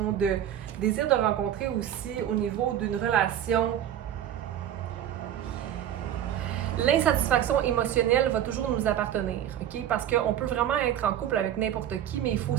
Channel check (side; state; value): left; quieter; 10.7 dB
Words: de désir de rencontrer aussi au niveau d'une relation. L'insatisfaction émotionnelle va toujours nous appartenir, OK? Parce qu'on peut vraiment être en couple avec n'importe qui, mais il faut